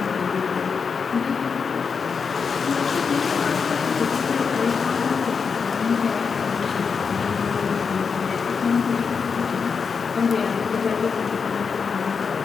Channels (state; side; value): quieter; right; 5.7 dB